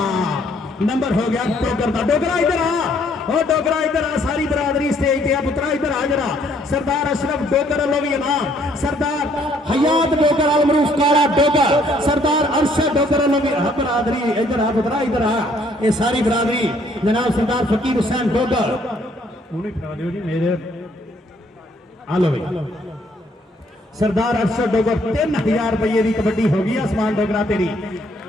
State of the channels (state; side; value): normal; both; correlation 0.65